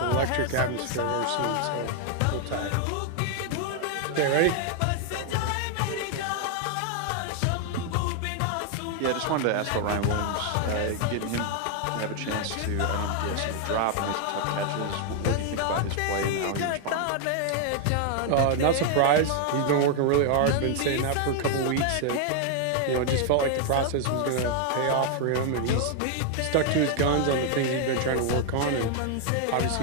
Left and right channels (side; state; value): both; different; correlation 0.00